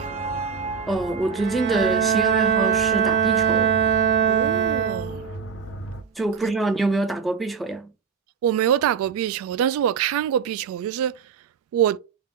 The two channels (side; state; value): left; quieter; 6.4 dB